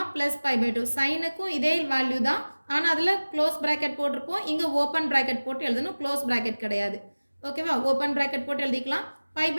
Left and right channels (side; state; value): both; inverted; correlation -1.00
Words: plus pi pi 2. சைனுக்கும் இதே வேல்யூ தான், ஆனால் அதில் க்ளோஸ் ப்ராக்கெட் போட்டிருப்போம். இங்கே ஓப்பன் ப்ராக்கெட் போட்டு எழுதணும், க்ளோஸ் ப்ராக்கெட் கிடையாது. ஓகேவா? ஓப்பன் ப்ராக்கெட் போட்டு எழுதிக்கலாம். பை